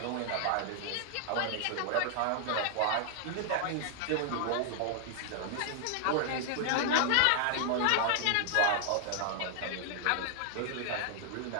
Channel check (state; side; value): different; both; correlation 0.00